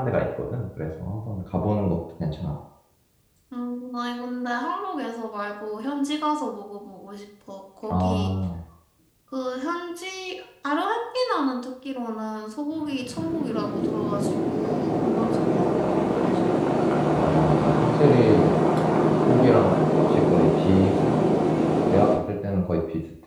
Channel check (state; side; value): identical; both; correlation 1.00